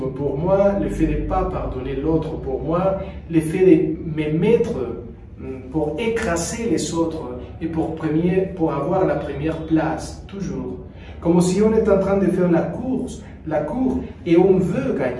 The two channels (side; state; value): both; identical; correlation 1.00